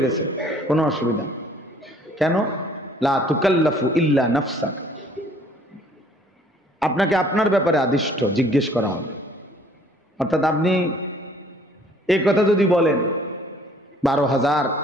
গেছে, কোনো অসুবিধা। কেন? লা তুকাল্লাফু ইল্লা নাফসাক, আপনাকে আপনার ব্যাপারে আদিষ্ট জিজ্ঞেস করা হবে। অর্থাৎ আপনি এই কথা যদি বলেন 12,000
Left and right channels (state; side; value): normal; both; correlation 0.57